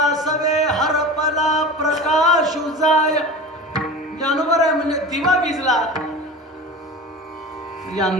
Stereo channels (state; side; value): normal; both; correlation 0.33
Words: हरपला प्रकाश उजाय. ज्ञानोबराय म्हणजे दिवा विजला म्हणजे